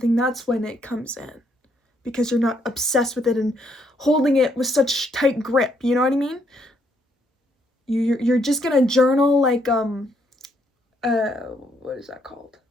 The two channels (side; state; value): both; normal; correlation 0.72